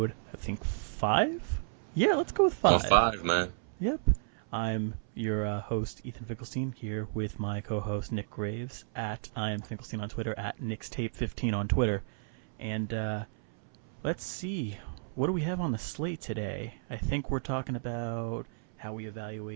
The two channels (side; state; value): left; silent; 56 dB below the other